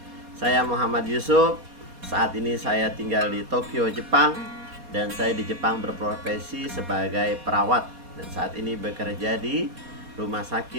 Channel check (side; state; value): left; late; 4.2 ms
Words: Saya Muhammad Yusuf. Saat ini saya tinggal di Tokyo, Jepang. Dan saya di Jepang berprofesi sebagai perawat. Dan saat ini bekerja di rumah